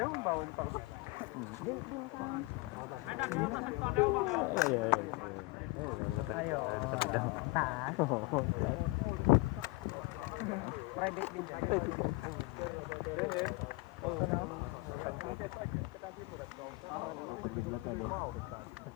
mabawon pa ko. Ayo. Taas. Private din.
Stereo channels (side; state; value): right; quieter; 23.8 dB